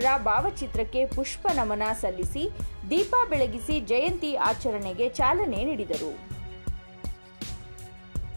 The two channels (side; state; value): both; inverted; correlation -1.00